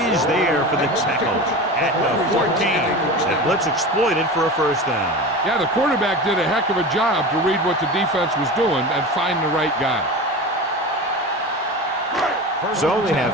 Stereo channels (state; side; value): normal; both; correlation 0.29